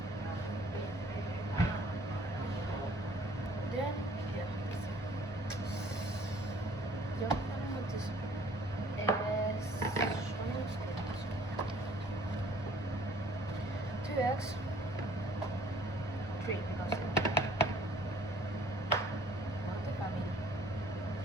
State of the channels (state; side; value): normal; both; correlation 0.56